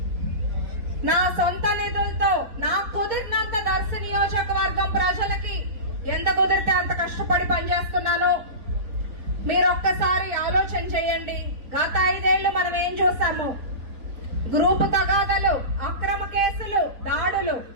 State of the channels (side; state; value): left; late; 4.4 ms